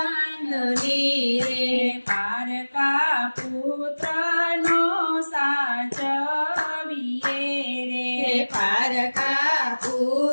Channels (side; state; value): both; inverted; correlation -1.00